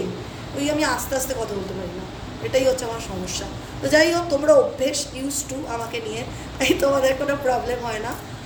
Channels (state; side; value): identical; both; correlation 1.00